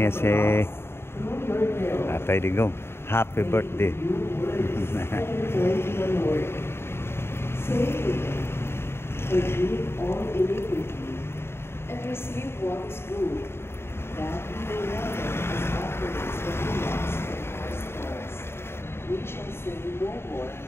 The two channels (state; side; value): late; right; 0.12 ms